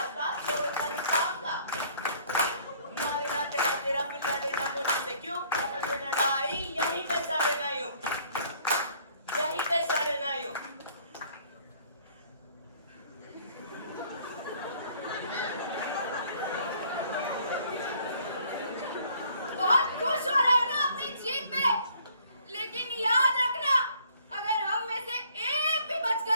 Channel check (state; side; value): inverted; both; correlation -0.60